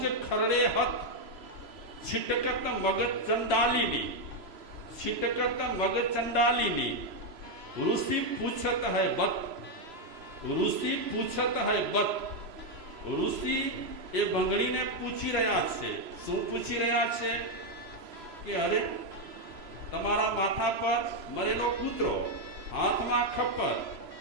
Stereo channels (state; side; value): late; left; 3.0 ms